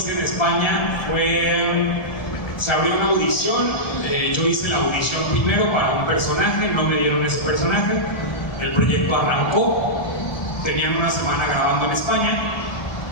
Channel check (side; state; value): right; late; 1.3 ms